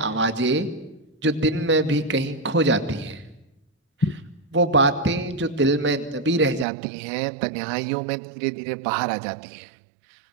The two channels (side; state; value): left; drops out; at 6.7 s